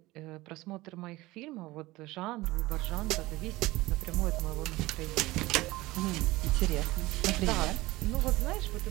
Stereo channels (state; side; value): quieter; left; 19.6 dB